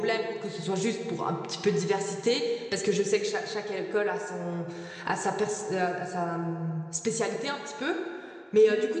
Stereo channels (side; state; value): both; identical; correlation 1.00